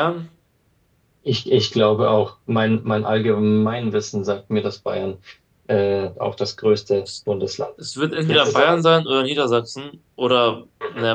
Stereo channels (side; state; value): both; identical; correlation 1.00